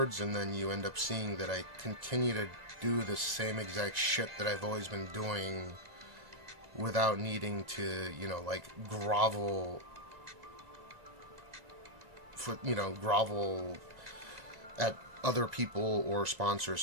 and then you end up seeing that I continue to do the same exact shit that I've always been doing without needing to, you know, like grovel at other people or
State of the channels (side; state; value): left; late; 2.0 ms